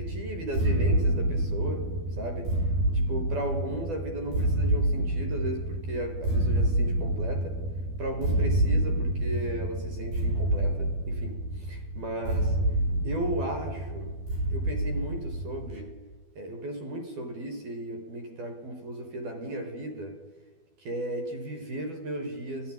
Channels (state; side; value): late; left; 12 ms